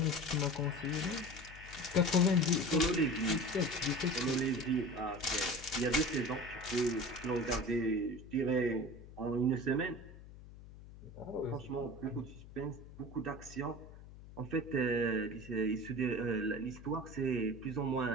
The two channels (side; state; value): left; noise; hum, 17 dB below the sound